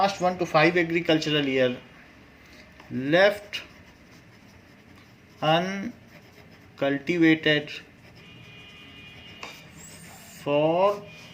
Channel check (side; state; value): both; identical; correlation 1.00